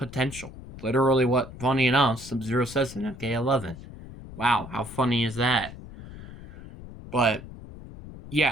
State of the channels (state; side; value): noise; left; rumble, 15 dB below the sound